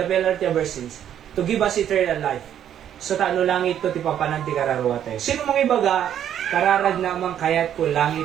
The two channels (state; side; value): quieter; left; 10.0 dB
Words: penalty of our sins, to give us eternal life. So taano langit to ti papananti kararwa tayo. Sino mang ibaga, kararag naman kaya't kung